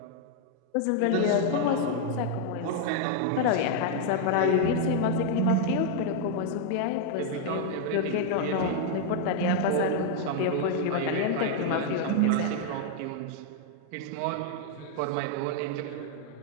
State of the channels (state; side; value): different; both; correlation 0.00